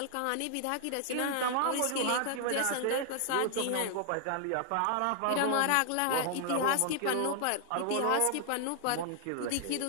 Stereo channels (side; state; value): both; different; correlation 0.00